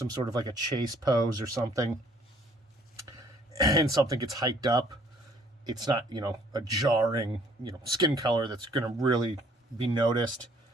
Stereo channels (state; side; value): normal; both; correlation 0.60